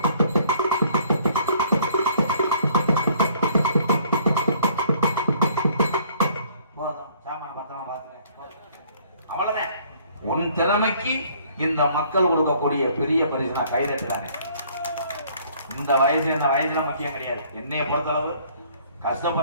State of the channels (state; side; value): inverted; both; correlation -0.60